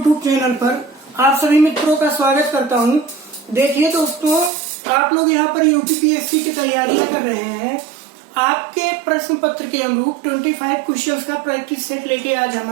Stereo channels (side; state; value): left; drops out; at 4.5 s